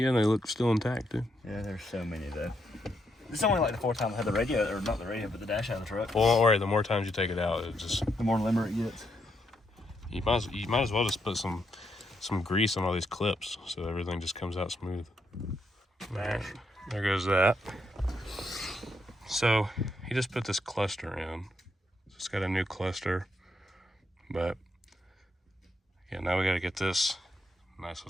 they look still intact too. Yeah, there's so many though. This is only like the fourth time I had the radio, or not the radio, but the dash out of the truck. Well, don't worry. The more times you take it out, it just the more limber it gets. You might as well just put some grease on all these clips so everything just comes out smooth. Right, there goes that. So he just put this cluster in. It's got a new cluster, but yeah, now we got to get this nice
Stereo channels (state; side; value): normal; both; correlation 0.79